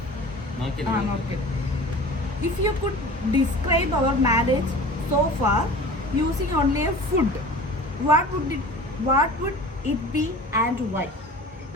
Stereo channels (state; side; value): normal; both; correlation 0.40